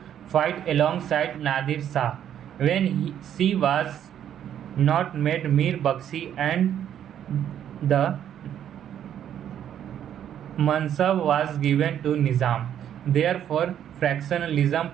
fight alongside Nadir Shah when she was not made Mir Bakshi and the Mansab was given to Nizam. Therefore,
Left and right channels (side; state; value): left; quieter; 10.0 dB